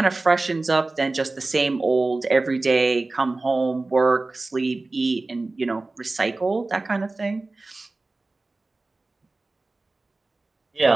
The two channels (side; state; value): left; quieter; 3.3 dB